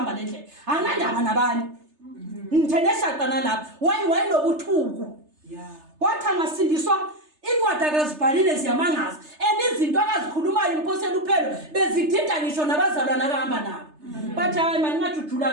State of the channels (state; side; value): late; left; 3.3 ms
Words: lendlela. Anandaba nabani. Ngithene eshaqa nalabo. Wayinobuthuku. Wathi angasindiswa Ingwada akazibhalile ziyamangaza. Izinto akazikhulumayo umphosela uphelo bezidida ngisho nabazalwana akahamba nabo. Bathi hayi manje